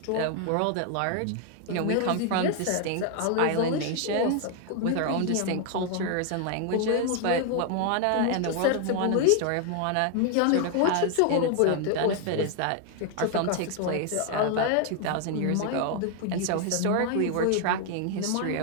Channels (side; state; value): both; different; correlation 0.00